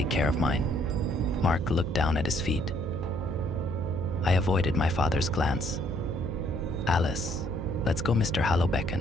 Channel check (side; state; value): right; noise; hum, 6 dB below the sound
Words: care of mine. Mark looked down at his feet. I avoided my father's glance. Alice, let's go, Mr. Hallow